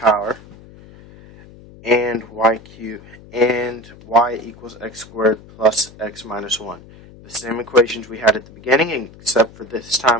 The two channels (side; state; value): left; noise; hum, 21 dB below the sound